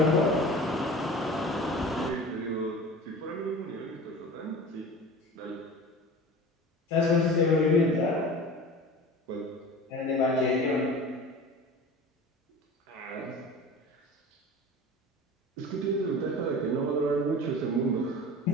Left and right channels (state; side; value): normal; both; correlation 0.37